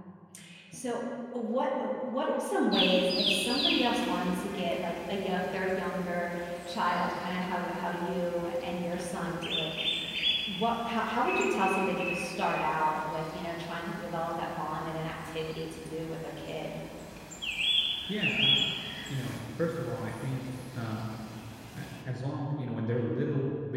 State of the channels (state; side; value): identical; both; correlation 1.00